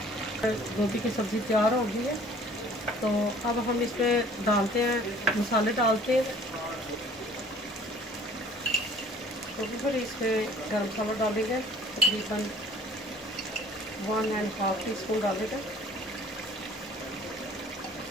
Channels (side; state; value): both; normal; correlation 0.53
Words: गोभी की सब्ज़ी तैयार हो गई है। तो अब हम इसमें डालते हैं, मसाले डालते हैं। तो फिर इसमें गर्म मसाला डालेंगे तकरीबन 1.5 टीस्पून डालेंगे